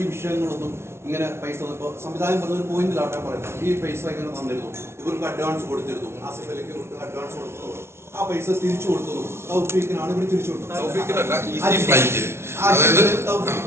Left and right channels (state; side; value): late; left; 0.12 ms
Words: വിഷയങ്ങളൊന്നും ഇങ്ങനെ പൈസ സംവിധാനം പറഞ്ഞ ഒരു പോയിന്റിലാട്ടെ പറയുന്നത്, ഈ പൈസ ഇങ്ങനെ തന്നിരുന്നു, ഇവർക്ക് അഡ്വാൻസ് കൊടുത്തിരുന്നു, ആസിഫ് അലിക്ക് അഡ്വാൻസ് കൊടുത്തു, ആ പൈസ തിരിച്ചു കൊടുത്തു, തൗഫീഖിനാണ് ഇവർ തിരിച്ചു കൊടുത്തത്.